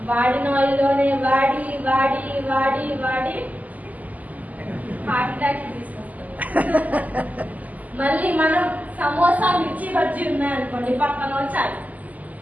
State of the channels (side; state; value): left; late; 0.078 ms